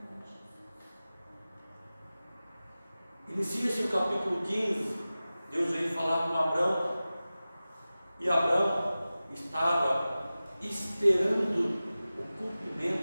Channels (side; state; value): both; inverted; correlation -0.96